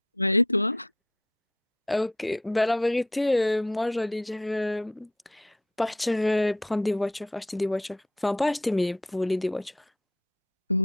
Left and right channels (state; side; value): normal; both; correlation 0.52